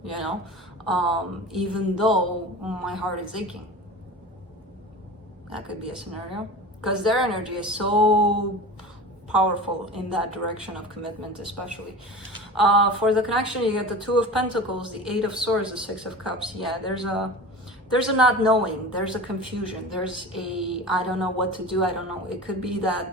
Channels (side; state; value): both; normal; correlation 0.34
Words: you know, even though my heart is aching. That could be a scenario, because their energy is so powerful in that direction of commitment, especially. For the connection, you get the Two of Pentacles, the Eight of Swords, the Six of Cups. Yeah, there's there's a not knowing, there's a confusion, there's a, I don't know what to do, I don't know. It could be